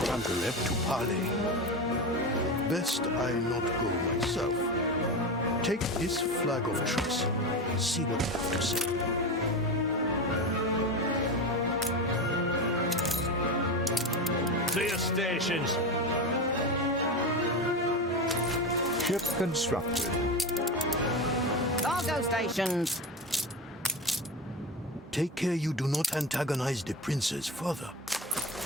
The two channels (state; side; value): normal; both; correlation 0.21